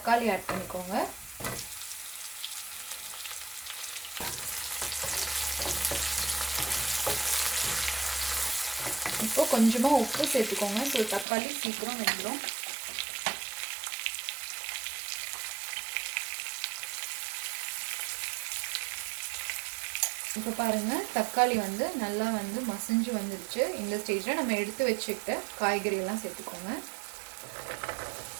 ஆட் பண்ணிக்கோங்க. இப்போ கொஞ்சமாக உப்பு சேர்த்துக்கோங்க, ஸோ தக்காளி சீக்கிரம் வெந்துடும். இப்போ பாருங்கள், தக்காளி வந்து நல்லா வந்து மசிஞ்சு வந்துடுச்சு. இந்த ஸ்டேஜில் நம்ம எடுத்து வச்சுக்கிட்ட காய்கறியெல்லாம் சேர்த்துக்கோங்க.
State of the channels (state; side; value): drops out; left; at 11.2 s